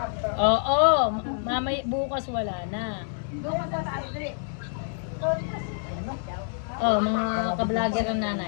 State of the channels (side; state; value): right; silent; digital silence